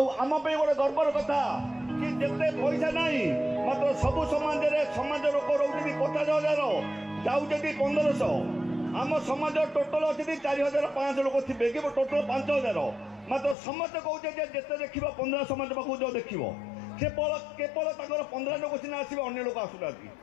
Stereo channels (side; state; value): right; drops out; at 13.6 s